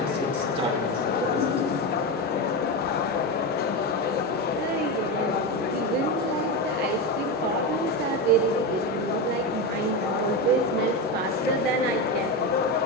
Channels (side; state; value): both; normal; correlation 0.16